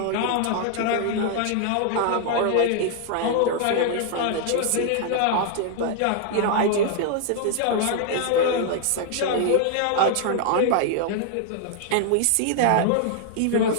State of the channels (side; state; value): both; different; correlation -0.01